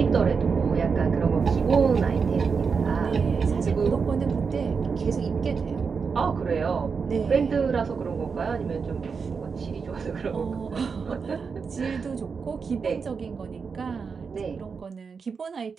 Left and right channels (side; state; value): left; quieter; 5.5 dB